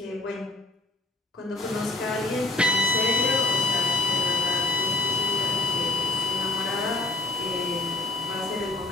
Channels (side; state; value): right; quieter; 3.0 dB